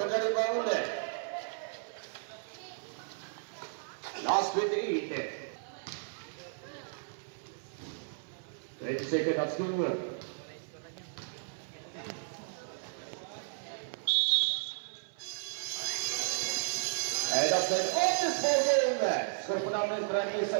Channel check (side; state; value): left; silent; 55 dB below the other